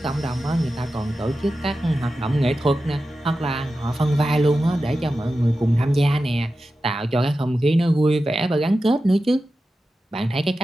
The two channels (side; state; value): both; normal; correlation 0.92